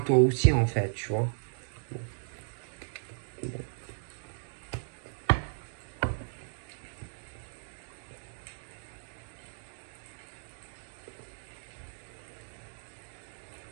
aussi, en fait, tu vois. Bon. Bon.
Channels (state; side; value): silent; left; digital silence